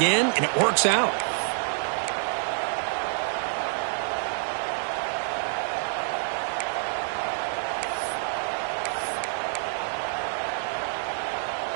and it works out.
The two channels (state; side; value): silent; left; digital silence